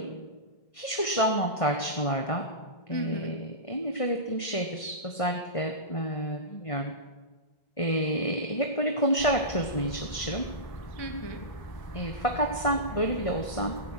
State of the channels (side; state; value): right; late; 1.5 ms